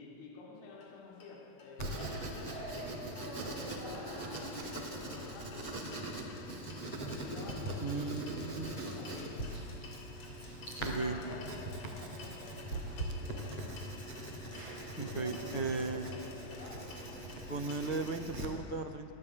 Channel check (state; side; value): late; right; 7.9 ms